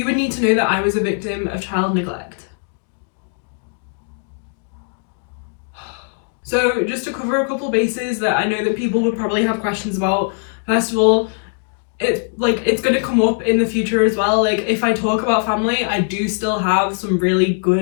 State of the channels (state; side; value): silent; right; 56 dB below the other